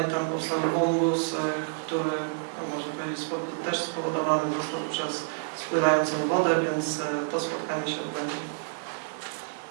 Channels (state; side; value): silent; left; digital silence